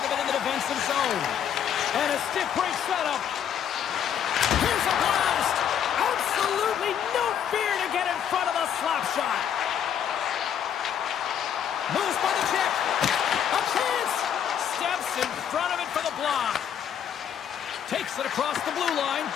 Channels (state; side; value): quieter; right; 9.0 dB